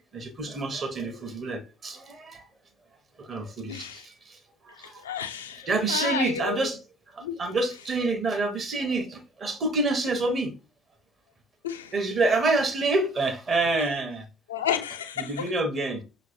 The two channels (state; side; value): normal; both; correlation 0.53